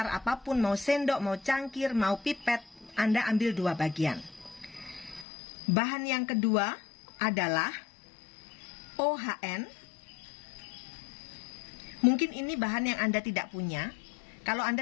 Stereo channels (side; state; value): right; drops out; at 5.2 s